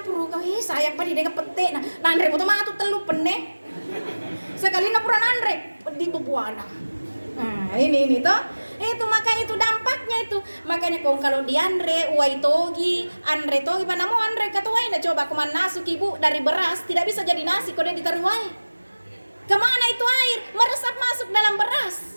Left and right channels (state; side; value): inverted; both; correlation -1.00